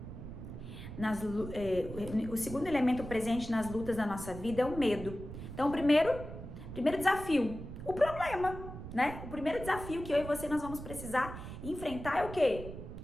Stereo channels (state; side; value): noise; right; rumble, 10 dB below the sound